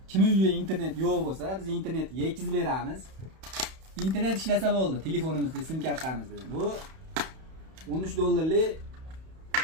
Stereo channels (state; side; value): late; left; 31 ms